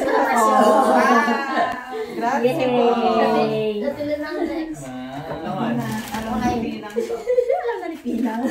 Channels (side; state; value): both; identical; correlation 1.00